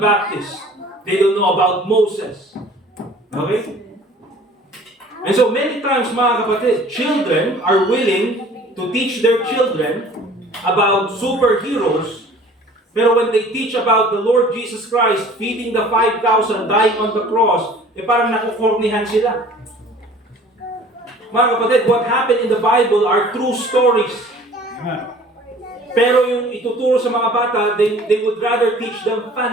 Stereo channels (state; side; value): normal; both; correlation 0.49